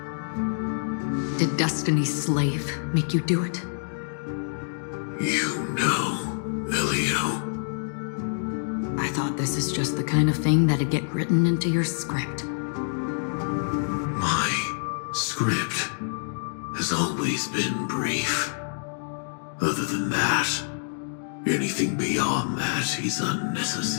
Did Destiny's slave make you do it? You know, Elio. I thought this is just the kind of thing that'd get written into your script. My script has always been brief. Other than that, anything beyond that is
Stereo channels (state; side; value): silent; right; digital silence